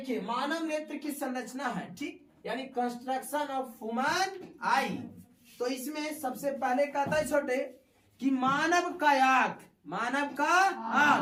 मानव नेत्र की संरचना है, ठीक, यानी कंस्ट्रक्शन ऑफ ह्यूमन आई। तो इसमें सबसे पहले कहता है छोटे कि मानव का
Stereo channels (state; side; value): identical; both; correlation 1.00